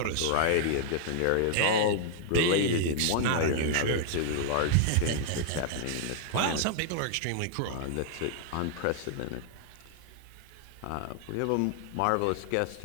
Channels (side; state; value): both; different; correlation -0.01